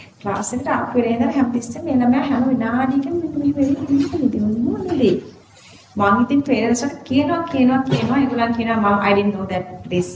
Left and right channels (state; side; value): identical; both; correlation 1.00